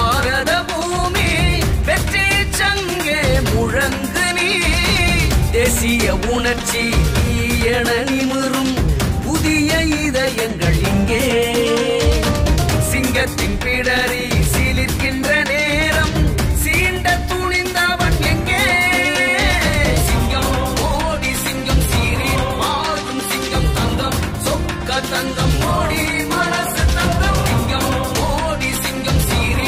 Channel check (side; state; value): both; identical; correlation 1.00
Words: பூமி வெற்றி சங்கே முழங்கு நீ தேசிய உணர்ச்சி என நிமிரும்